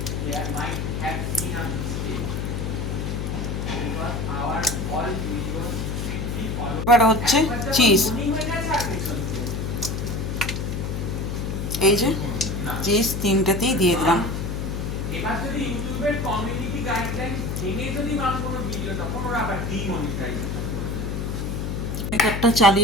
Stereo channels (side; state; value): left; noise; hum, 2 dB below the sound